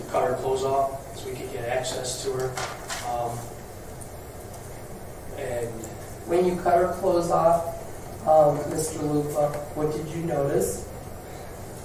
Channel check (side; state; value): both; identical; correlation 1.00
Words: cut her clothes off so we could get access to her. And When you cut her clothes off, Mr. Lupa, what did you notice?